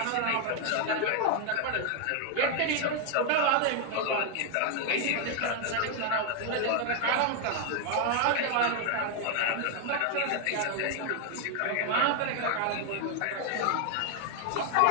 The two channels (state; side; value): different; both; correlation 0.00